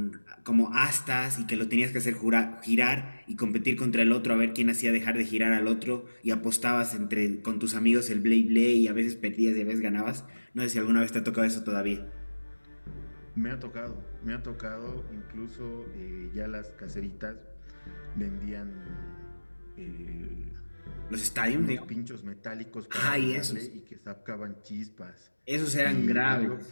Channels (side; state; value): both; inverted; correlation -1.00